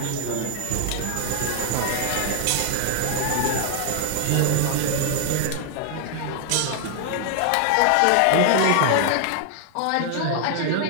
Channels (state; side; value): different; both; correlation 0.00